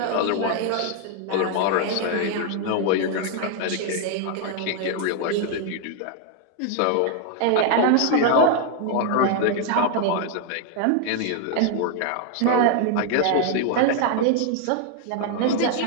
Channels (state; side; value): different; both; correlation 0.00